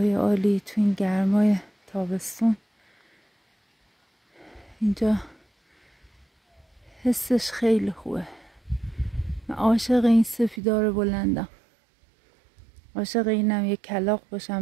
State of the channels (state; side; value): drops out; left; at 10.6 s